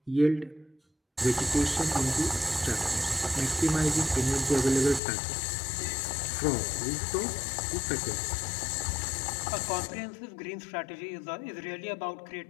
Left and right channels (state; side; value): drops out; right; at 5.0 s